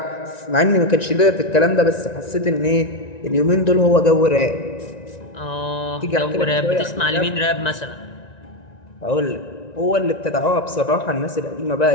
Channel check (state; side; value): late; right; 1.9 ms